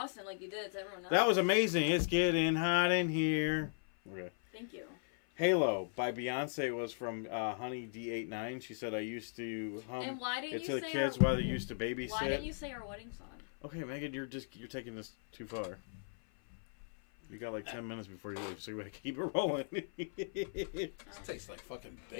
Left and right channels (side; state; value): right; silent; 53 dB below the other